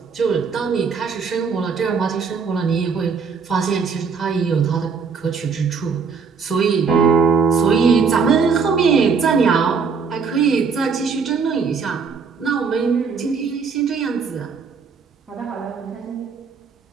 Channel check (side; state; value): left; quieter; 5.6 dB